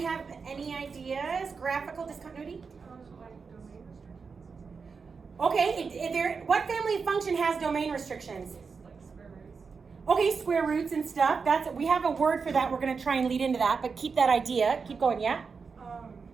any ideas? Graphical discontinuity? Okay, what family function has domain restrictions? Like square roots. Okay, square roots and stuff. We have a word for that. We're going to try and lead into that, but keep that idea. Keep going, yeah?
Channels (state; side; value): quieter; left; 5.2 dB